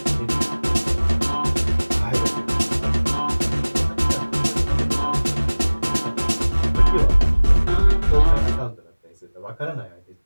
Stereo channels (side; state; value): both; inverted; correlation -1.00